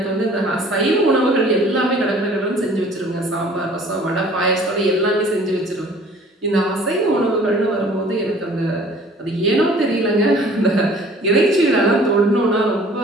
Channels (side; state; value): both; normal; correlation 0.51